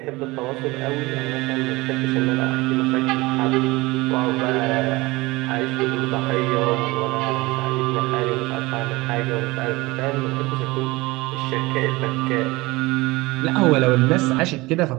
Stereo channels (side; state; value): left; quieter; 21.8 dB